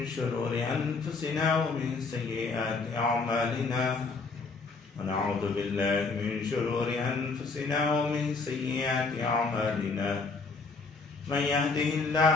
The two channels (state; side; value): quieter; right; 4.1 dB